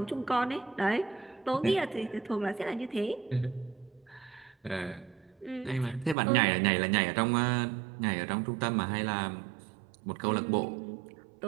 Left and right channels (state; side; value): drops out; left; at 6.2 s